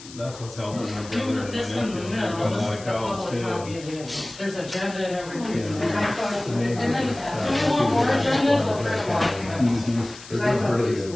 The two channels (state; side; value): noise; left; hiss, 17 dB below the sound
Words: that's what's helping my brother and my This one, nephew. no, They've got a this lot is of the cows public too. copy again. There's agenda and everything. Yeah. And I thought, and then, do you want more agendas? I'll print them off. Mhm. They're doing really good.